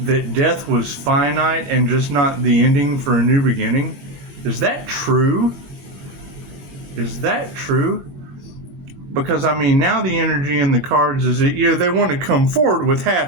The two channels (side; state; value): left; late; 22 ms